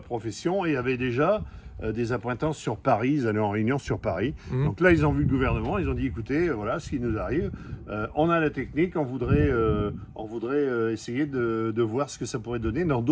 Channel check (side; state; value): both; identical; correlation 1.00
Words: profession et avaient déjà des appointances sur Paris, ils allaient en réunion sur Paris. Donc là, ils ont vu le gouvernement, ils ont dit, écoutez, voilà ce qui nous arrive, on a la technique, on voudrait essayer de voir ce que ça pourrait donner dans